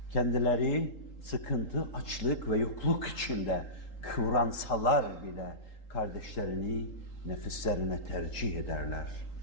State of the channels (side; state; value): right; late; 3.8 ms